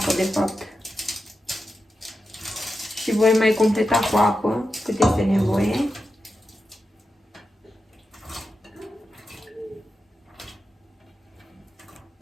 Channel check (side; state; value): both; normal; correlation 0.90